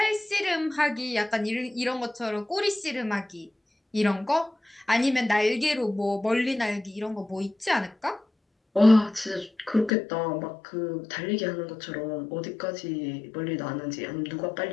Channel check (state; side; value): drops out; right; at 9.9 s